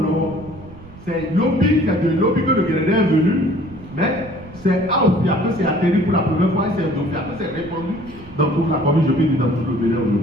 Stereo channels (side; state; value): right; noise; rumble, 19 dB below the sound